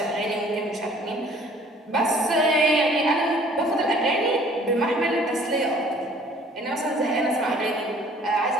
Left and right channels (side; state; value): both; normal; correlation 0.55